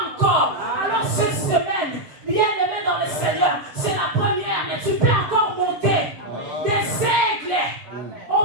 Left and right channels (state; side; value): late; left; 7.0 ms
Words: encore. Alors cette semaine, bien aimé dans le Seigneur, c'est la première, mais tu peux encore monter. Des aigles,